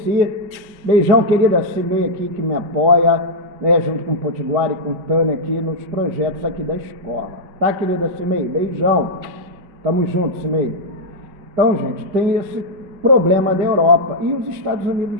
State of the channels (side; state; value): left; late; 5.8 ms